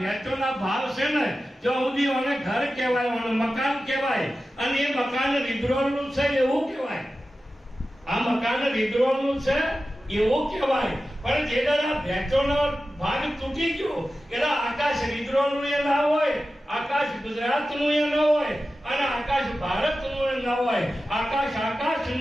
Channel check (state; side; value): normal; both; correlation 0.94